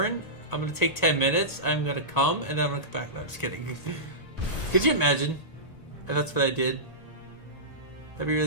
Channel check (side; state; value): right; late; 1.8 ms